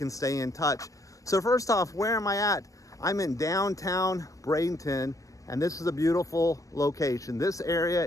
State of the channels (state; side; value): late; right; 0.16 ms